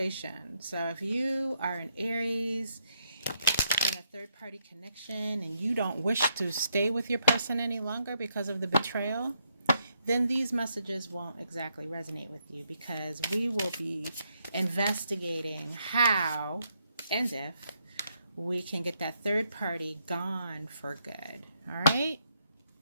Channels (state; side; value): inverted; both; correlation -0.76